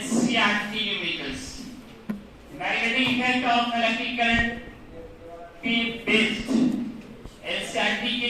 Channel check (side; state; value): both; identical; correlation 1.00